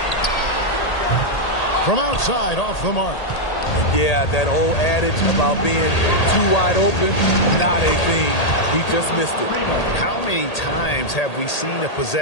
From outside, off the mark. Yeah, that old adage about being too wide open, not a thing. He just missed it. How many times have we seen a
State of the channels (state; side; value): late; right; 1.8 ms